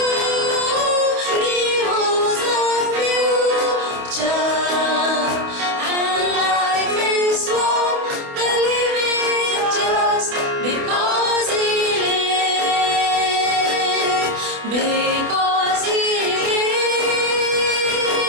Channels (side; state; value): left; late; 28 ms